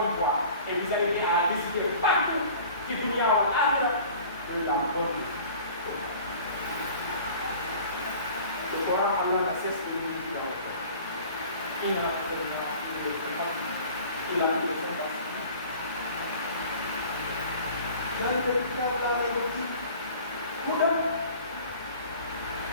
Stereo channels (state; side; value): inverted; both; correlation -0.45